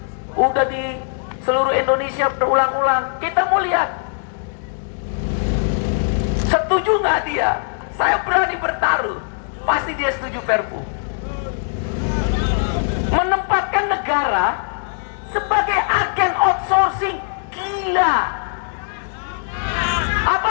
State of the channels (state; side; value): silent; right; digital silence